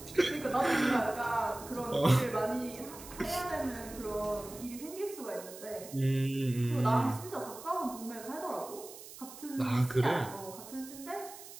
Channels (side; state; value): right; noise; hiss, 15 dB below the sound